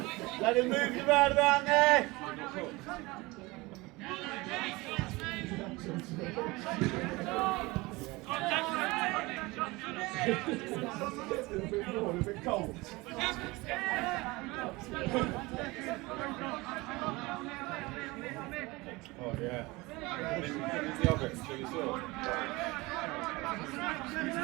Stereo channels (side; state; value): left; quieter; 22.7 dB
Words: Let him move around there. Oh yeah. In the oven, so you saw.